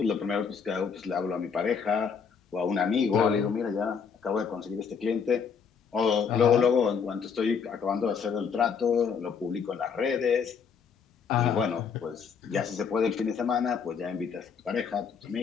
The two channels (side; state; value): right; quieter; 6.3 dB